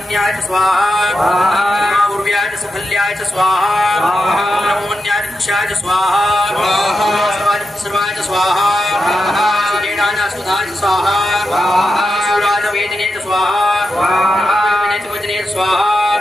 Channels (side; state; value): both; normal; correlation 0.88